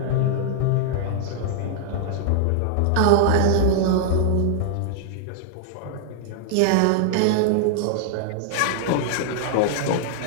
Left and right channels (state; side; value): different; both; correlation -0.01